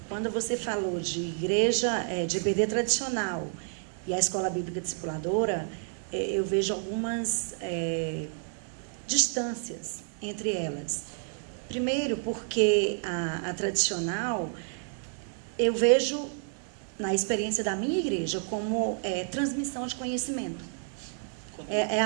quando você falou de igreja, de EBD tradicional e a escola bíblica discipuladora, eu vejo algumas distâncias entre elas. Primeiro, porque a tradicional, eu vejo, na experiência da minha igreja, como transmissão de conhecimento. É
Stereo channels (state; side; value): silent; left; 58 dB below the other